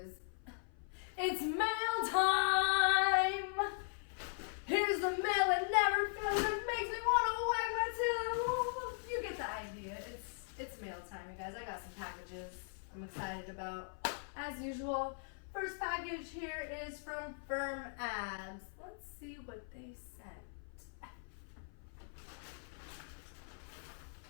It's mail time! Here's the mail that never fails, it makes me want to wag my tail. You get the idea. It's mail time, you guys. I got some packages I'm excited about. As usual, first package here is from FirmAbs. Let's see what they sent.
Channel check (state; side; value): silent; right; 51 dB below the other